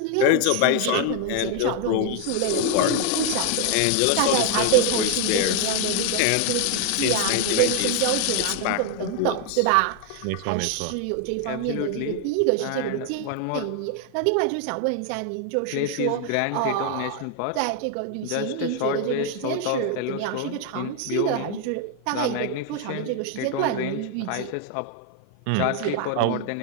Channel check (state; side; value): different; both; correlation 0.01